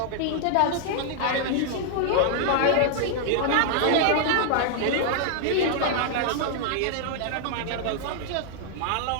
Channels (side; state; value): both; different; correlation 0.00